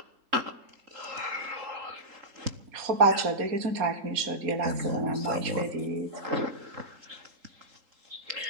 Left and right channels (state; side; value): late; left; 3.8 ms